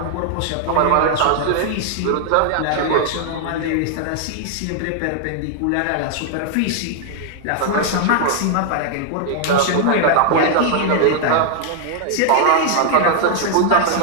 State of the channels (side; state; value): both; different; correlation -0.01